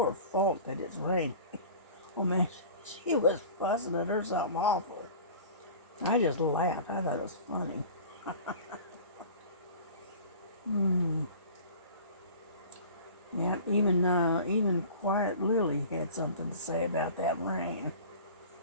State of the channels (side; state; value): both; inverted; correlation -0.41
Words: fault that it's raining. Oh man, She was fussing at her something awful. I just laughed. I thought it was funny. Yeah, even Quiet Lily had something to say about that rain